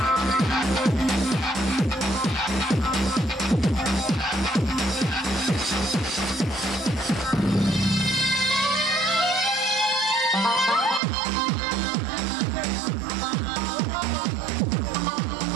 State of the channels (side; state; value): left; drops out; at 11.0 s